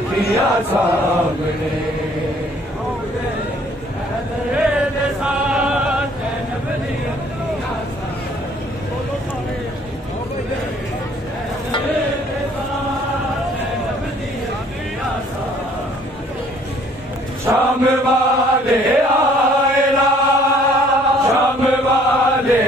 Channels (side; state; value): both; normal; correlation 0.59